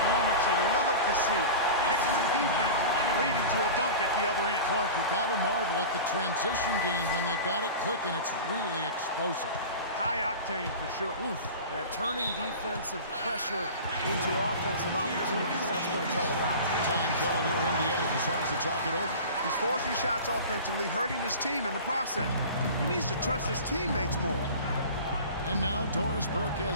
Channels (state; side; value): inverted; both; correlation -0.34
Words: moments you love to see. Excellent defense leading to a dunk at the other end. Clark, you got to marvel at the transition game when they've got it clicking. It's really explosive. High octane for sure. Oof. Yeah, turning defensive pressure into offensive opportunities. That's what it's all about. Time called here. Indiana decides to talk it over. He's forcing shots offensively, hurting his team in the process. He needs to trust his teammates more. And now Doris Burke